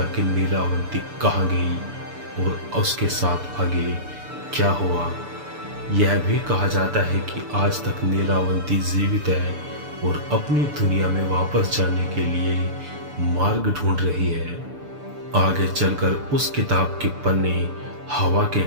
कि नीलावंती कहाँ गई और उसके साथ आगे क्या हुआ। यह भी कहा जाता है कि आज तक नीलावंती जीवित है और अपनी दुनिया में वापस जाने के लिए मार्ग ढूंढ रही है। आगे चलकर उस किताब के पन्ने हवा के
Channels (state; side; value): late; left; 6.9 ms